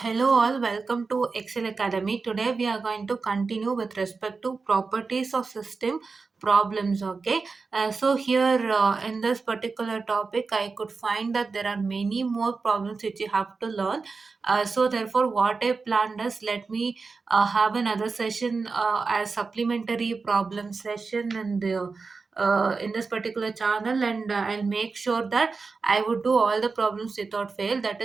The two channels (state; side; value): quieter; left; 4.4 dB